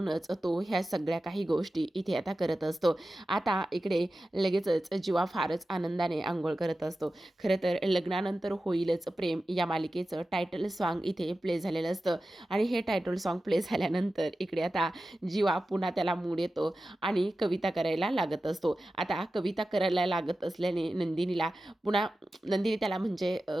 तो ह्या सगळ्या काही गोष्टी इथे आता करत असतो. आता इकडे लगेचच जीवा फारच आनंदाने अंघोळ करत असतो. खरं तर लग्नानंतर होईलच प्रेम या मालिकेचं टायटल सॉन्ग इथे प्ले झालेलं असतं आणि हे टायटल सॉन्ग प्ले झाल्यानंतर इकडे आता जीवा पुन्हा त्याला मूड येतो आणि कविता करायला लागत असतो. आता कविता करायला लागत असल्याने नंदिनी त्याला म्हणजे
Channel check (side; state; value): both; normal; correlation 0.94